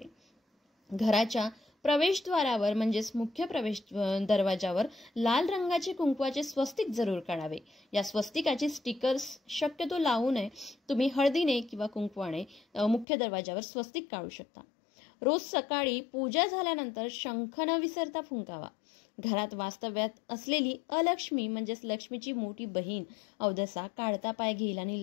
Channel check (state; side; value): drops out; right; at 13.1 s